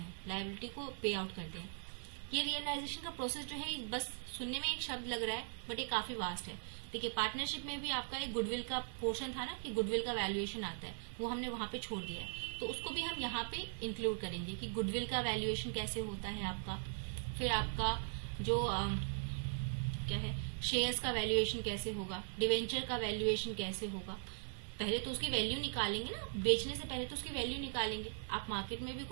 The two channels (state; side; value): silent; left; digital silence